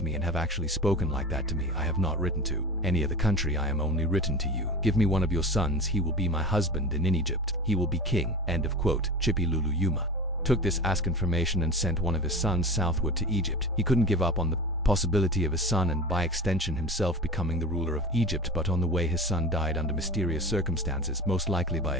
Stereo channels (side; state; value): both; normal; correlation 0.32